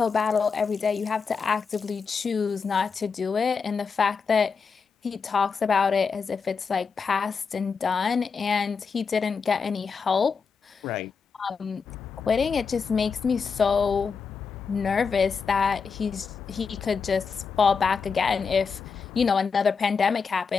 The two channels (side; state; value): right; quieter; 5.5 dB